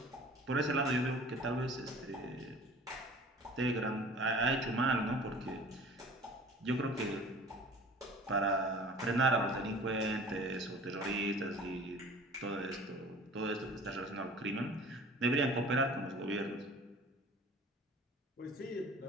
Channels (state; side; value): normal; both; correlation 0.45